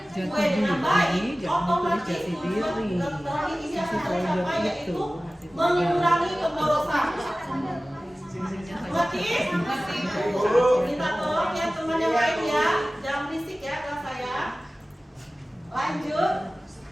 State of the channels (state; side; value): normal; both; correlation 0.97